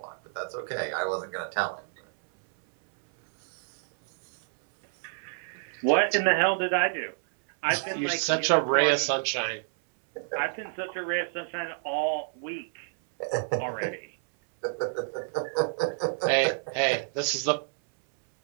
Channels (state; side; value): silent; left; 59 dB below the other